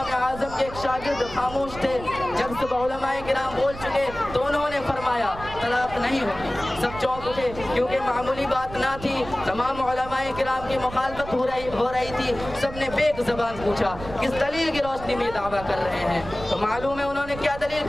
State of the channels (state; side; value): noise; right; rumble, 13 dB below the sound